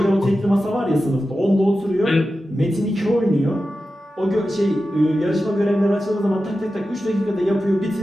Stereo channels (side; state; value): both; normal; correlation 0.92